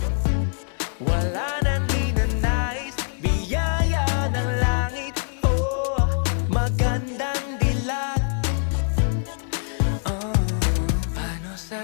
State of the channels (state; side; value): silent; right; digital silence